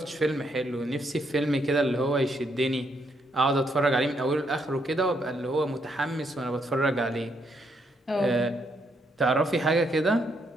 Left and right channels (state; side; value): normal; both; correlation 0.75